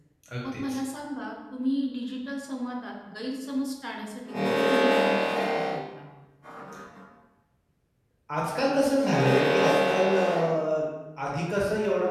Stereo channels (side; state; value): both; identical; correlation 1.00